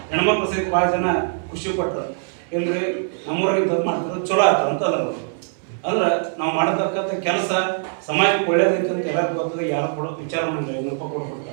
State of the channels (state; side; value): silent; left; digital silence